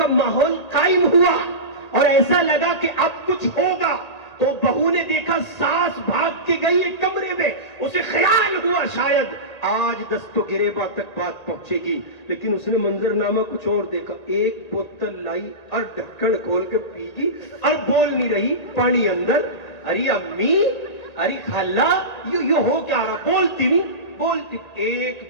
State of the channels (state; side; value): late; right; 1.8 ms